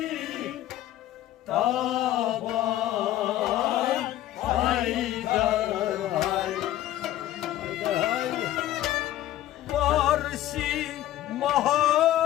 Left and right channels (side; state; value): right; quieter; 13.6 dB